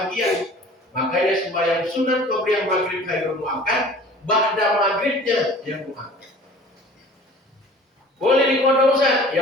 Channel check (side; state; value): both; normal; correlation 0.46